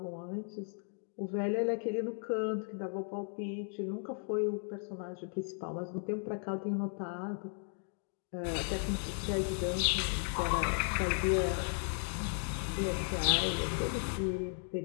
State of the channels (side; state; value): right; silent; 54 dB below the other